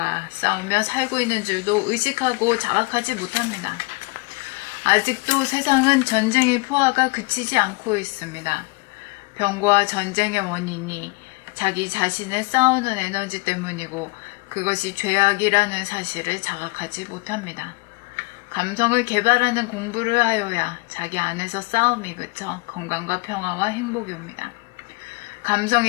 싸우며 살고 있는 줄도 의식하고 자각하지 못합니다. 아직도 세상은 전쟁의 포화가 그치지 않고 있습니다. 병과 전쟁의 원인이 자기 자신을 싸우는 에너지 때문이고 그것이 죄악이라는 사실을 자각하지 못합니다. 감성을 개발하는 공부를 하여야 자기 안에서 싸움이 그쳐 건강과 평화와 행복이 옵니다.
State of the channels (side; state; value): right; quieter; 28.1 dB